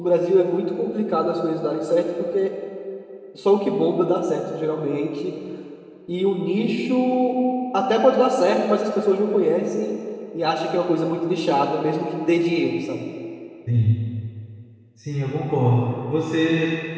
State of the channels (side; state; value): both; identical; correlation 1.00